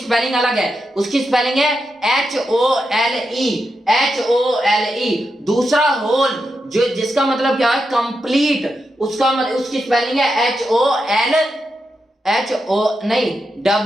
अलग है, उसकी स्पेलिंग है HOLE, HOLE। दूसरा होल जो जिसका मतलब क्या है कंप्लीट, उसका मतलब उसकी स्पेलिंग है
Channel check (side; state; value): both; normal; correlation 0.86